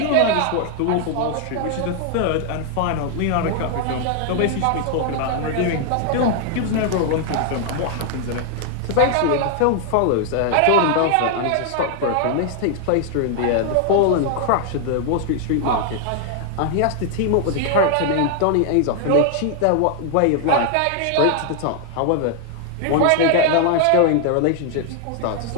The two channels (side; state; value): both; different; correlation 0.00